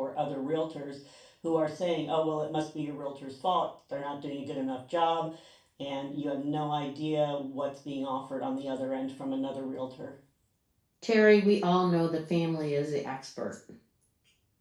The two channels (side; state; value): both; identical; correlation 1.00